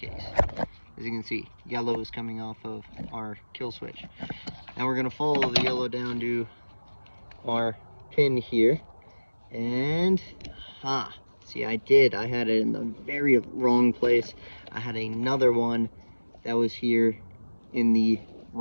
As you can see, yellow is coming off of our kill switch. Now we're gonna follow the yellow down to our pin here, and see, I had it in the very wrong place. I had another one that was here in the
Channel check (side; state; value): both; inverted; correlation -1.00